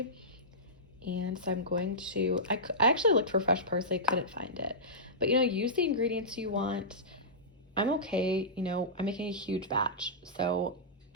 And so I'm going to, I actually looked for fresh parsley, couldn't find it. But, you know, use the ingredients you want. I'm okay, you know, I'm making a huge batch, so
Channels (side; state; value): both; normal; correlation -0.16